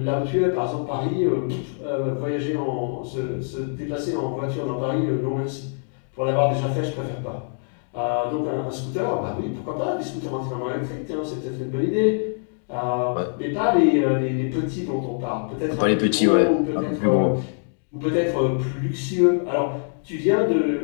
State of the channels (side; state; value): right; silent; 63 dB below the other